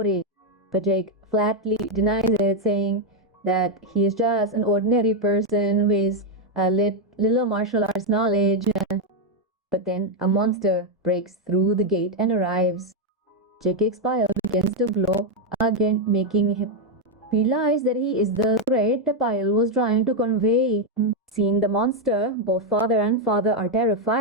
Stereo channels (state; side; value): normal; both; correlation 0.02